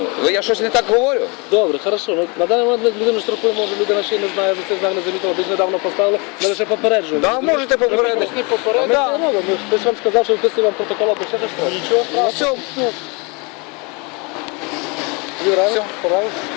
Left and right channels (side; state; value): right; quieter; 30.2 dB